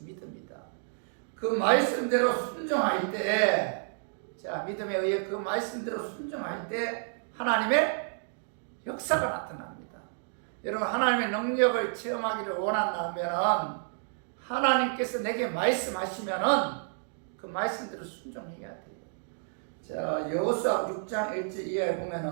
믿음이다. 그 말씀대로 순종할 때, 믿음에 의해 그 말씀대로 순종할 때 하나님의 역사가 나타납니다. 여러분 하나님의 능력을 체험하기를 원한다면 하나님께서 내게 말씀하시면은 그 말씀대로 순종해야 돼요. 여호수아 6장 1절 이하에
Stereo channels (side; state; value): left; silent; digital silence